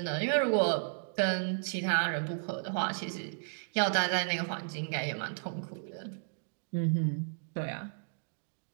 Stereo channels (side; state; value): left; silent; digital silence